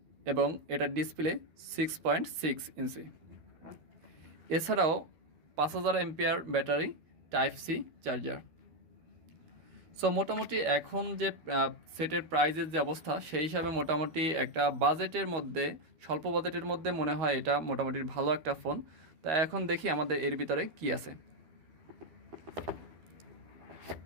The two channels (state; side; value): late; left; 12 ms